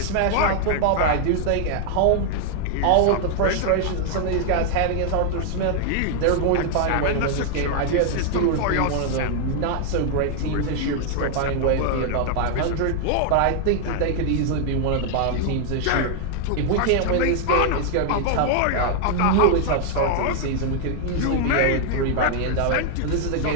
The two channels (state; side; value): different; both; correlation 0.00